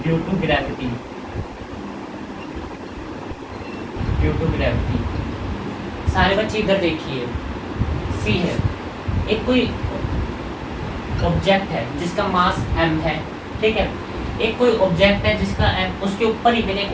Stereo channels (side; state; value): both; identical; correlation 1.00